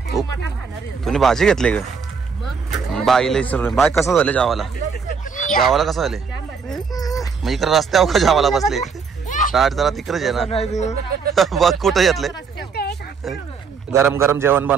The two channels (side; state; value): left; quieter; 5.7 dB